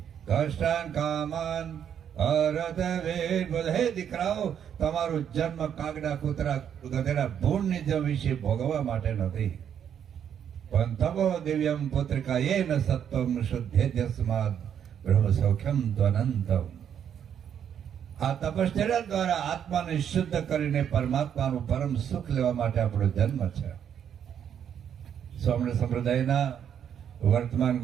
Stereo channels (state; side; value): quieter; left; 8.8 dB